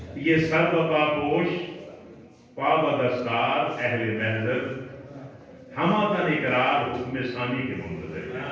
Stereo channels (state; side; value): identical; both; correlation 1.00